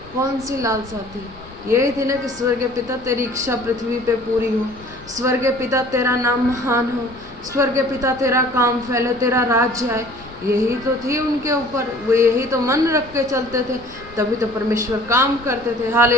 कौन सी लालसा थी? यही थी ना कि स्वर्गीय पिता तेरी इच्छा पृथ्वी पे पूरी हो, स्वर्गीय पिता तेरा नाम महान हो, स्वर्ग पिता तेरा काम फैले, तेरा राज्य आए, यही तो थी उनके ऊपर, वो यही तो मन रख के चलते थे, तभी तो परमेश्वर काम करते थे।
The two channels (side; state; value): left; noise; rumble, 21 dB below the sound